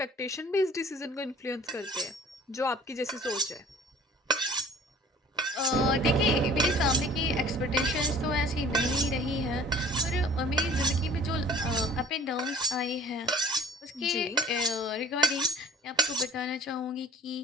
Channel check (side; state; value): both; normal; correlation 0.48